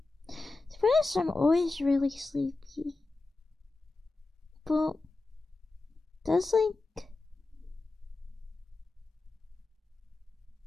To be honest, I'm always really sleepy. But there's like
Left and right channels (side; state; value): right; quieter; 3.3 dB